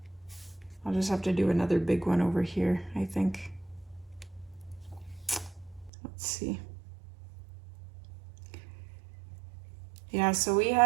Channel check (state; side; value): drops out; left; at 5.9 s